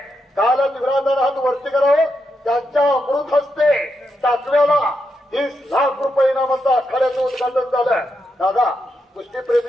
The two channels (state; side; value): normal; both; correlation 0.84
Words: कालच विराजमान हात वरती करावं. त्यांच्या अमृत हस्ते टाकव्याला 30 लाख रुपये इनामाचं आखाड्याचं उद्घाटन झालं. दादा कुस्ती